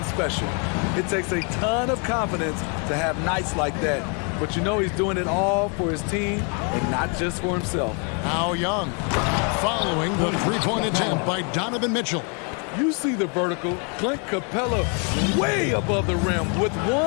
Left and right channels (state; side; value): quieter; right; 37.2 dB